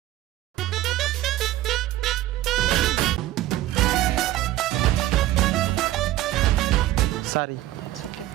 சாரி. It's okay.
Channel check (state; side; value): quieter; left; 14.9 dB